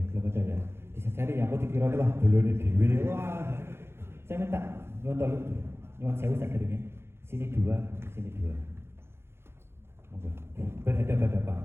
belum ada ya. Bisa cari ya. Aku dikira wah belum dewi. Wah, saya minta nyuwun sewu sakit sini 2, sini 2. Monggo.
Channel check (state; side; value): late; left; 0.12 ms